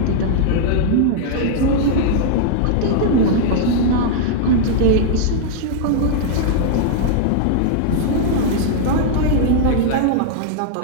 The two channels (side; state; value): both; different; correlation -0.01